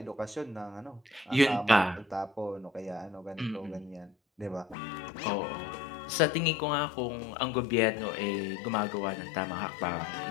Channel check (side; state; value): right; drops out; at 4.8 s